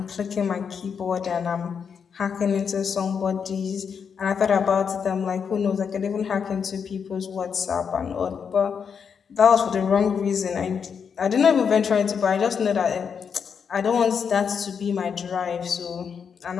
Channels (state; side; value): quieter; right; 6.7 dB